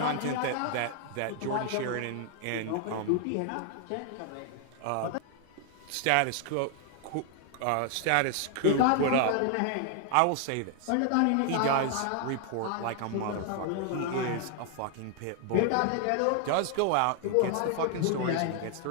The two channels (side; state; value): both; different; correlation 0.00